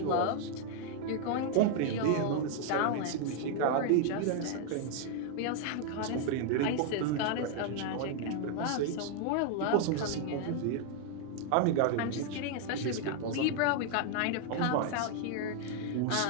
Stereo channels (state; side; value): different; both; correlation 0.00